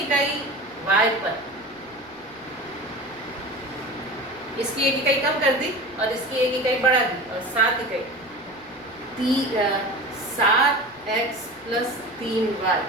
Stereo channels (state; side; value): noise; right; rumble, 30 dB below the sound